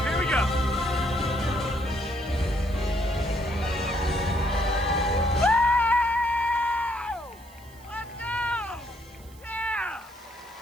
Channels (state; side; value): noise; right; hiss, 25 dB below the sound